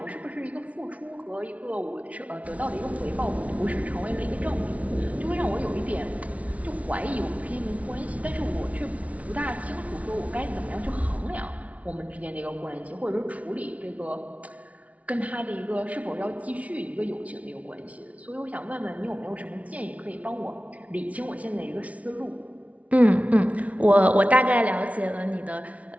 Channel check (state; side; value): late; left; 0.067 ms